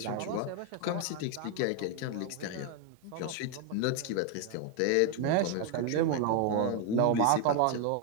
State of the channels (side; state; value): both; different; correlation 0.01